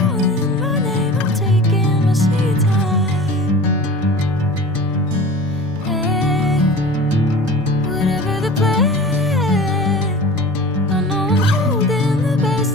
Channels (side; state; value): both; normal; correlation 0.38